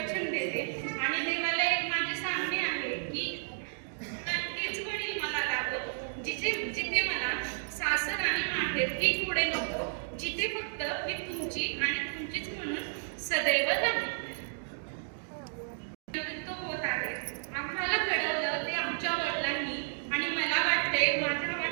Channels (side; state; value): left; silent; digital silence